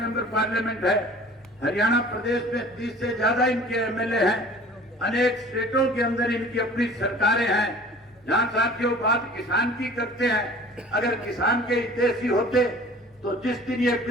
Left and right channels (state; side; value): normal; both; correlation 0.46